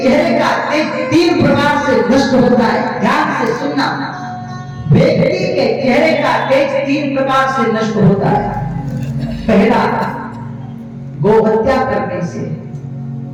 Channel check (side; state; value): both; identical; correlation 1.00